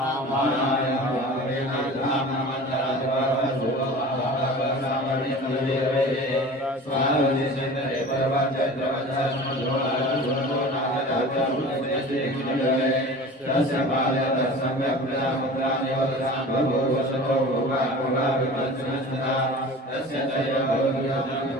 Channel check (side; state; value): both; normal; correlation 0.38